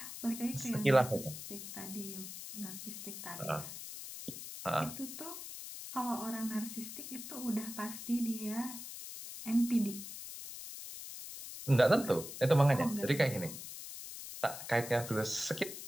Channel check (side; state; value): left; noise; hiss, 10 dB below the sound